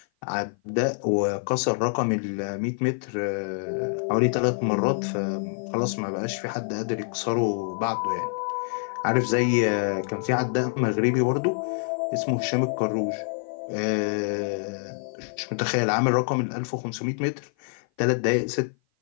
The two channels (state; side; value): silent; right; 56 dB below the other